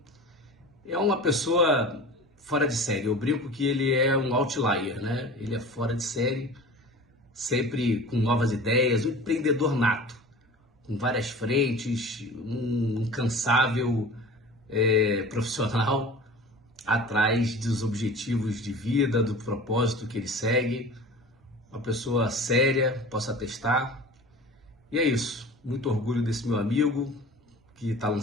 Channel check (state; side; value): normal; both; correlation 0.38